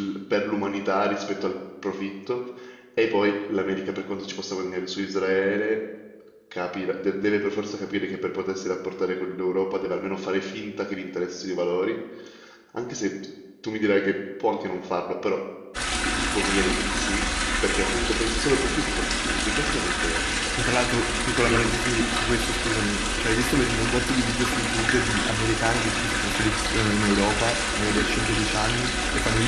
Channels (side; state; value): both; identical; correlation 1.00